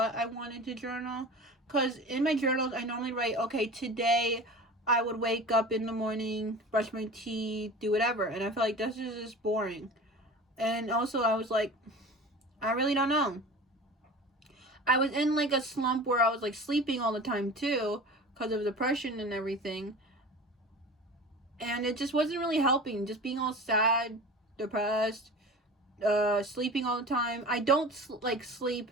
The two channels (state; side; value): normal; both; correlation 0.36